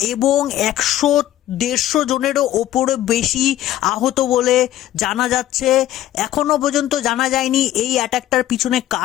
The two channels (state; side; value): quieter; right; 13.4 dB